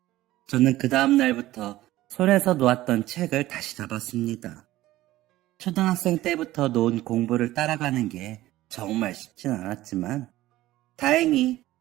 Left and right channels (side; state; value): left; quieter; 16.0 dB